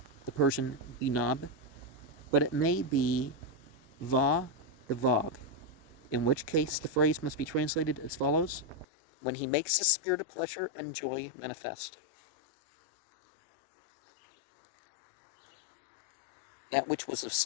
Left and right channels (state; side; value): drops out; right; at 8.8 s